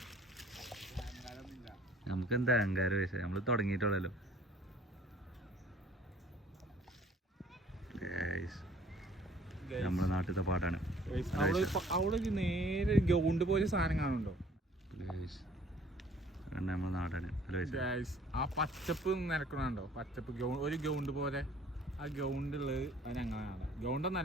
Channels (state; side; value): normal; both; correlation 0.55